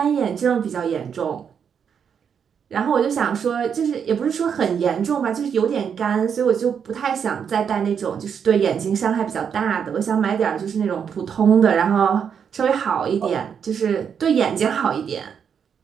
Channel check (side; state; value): left; quieter; 7.3 dB